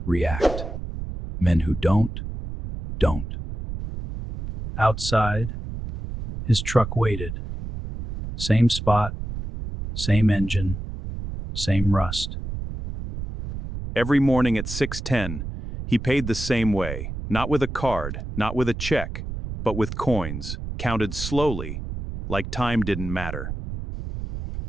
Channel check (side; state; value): right; noise; rumble, 7 dB below the sound